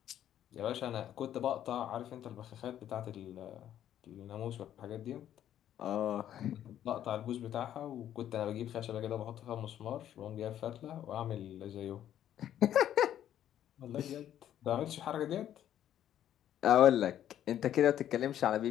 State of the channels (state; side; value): quieter; right; 11.0 dB